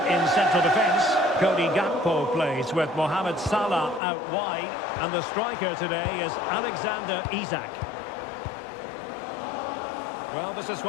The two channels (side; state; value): right; drops out; at 4.0 s